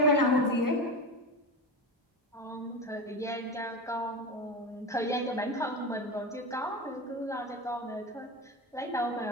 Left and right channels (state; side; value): normal; both; correlation 0.22